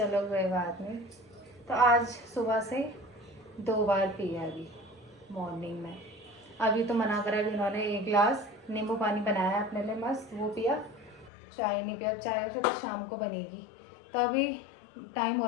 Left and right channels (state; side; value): drops out; right; at 11.3 s